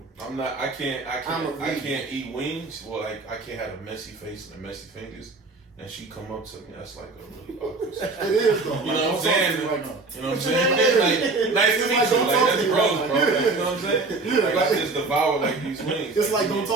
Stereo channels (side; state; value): left; quieter; 3.6 dB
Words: I can't eat wings. Well, like I can't have a messy face and messy fingers. And she come up to me, that's like a really awkward situation. It is though. You know what I'm saying? Right now. You know what I'm saying? Like, nice to meet you. Like, that's gross, bro. You know what I'm saying? Like, I just devour like these wings. It's like, don't